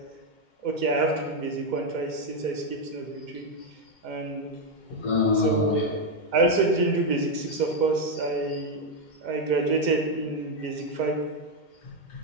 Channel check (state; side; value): late; right; 2.2 ms